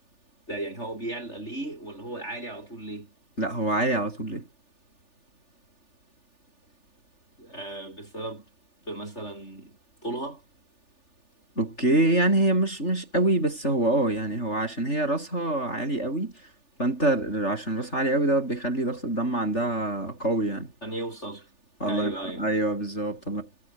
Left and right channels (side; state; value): right; late; 3.4 ms